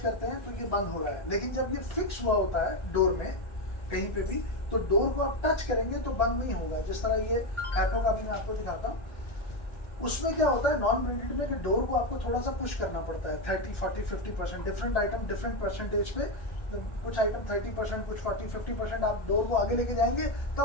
हैं तो ये बंद हो रहा है, लेकिन जब ये फिक्स हुआ होता है डोर में कहीं पे भी, तो डोर को आप टच करेंगे तो बंद नहीं होगा। जिस तरह ये हैपो का भी मैं आपको दिखाता हूँ, उसमें क्या होता है नॉन ब्रांडेड में कि डोर को आपको थोड़ा सा पुश करना पड़ता है 30, 40, 50%, डिफरेंट आइटम डिफरेंट परसेंटेज पे। कुछ आइटम 30%, कुछ 40, 50%, आप डोर को आगे लेके जाएंगे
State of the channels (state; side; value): late; right; 1.4 ms